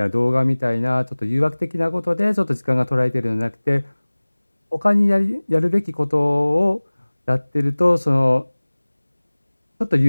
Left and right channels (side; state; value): both; inverted; correlation -1.00